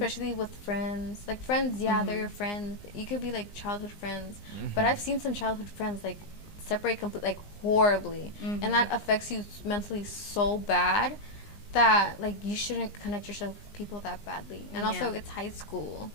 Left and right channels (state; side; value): late; right; 19 ms